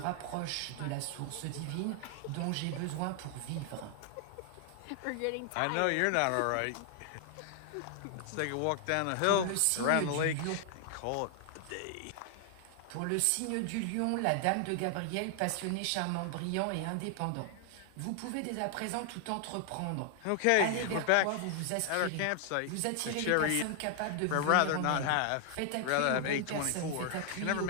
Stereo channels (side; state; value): both; different; correlation 0.00